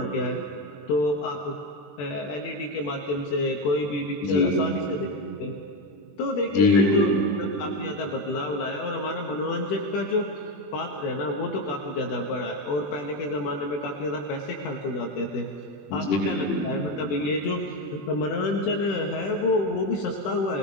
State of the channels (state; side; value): late; right; 20 ms